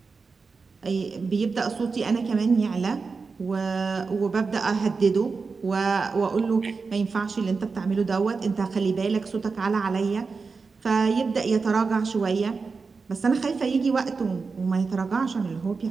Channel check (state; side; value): quieter; left; 4.6 dB